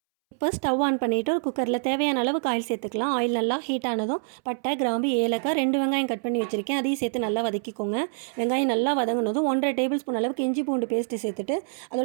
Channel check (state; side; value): silent; left; 61 dB below the other